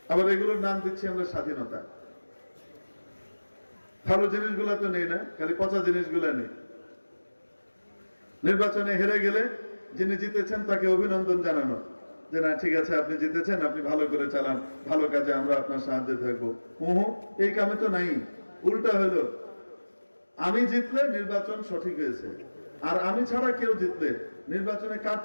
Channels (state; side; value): inverted; both; correlation -1.00